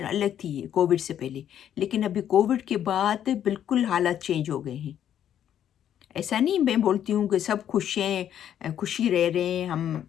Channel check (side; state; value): right; quieter; 10.1 dB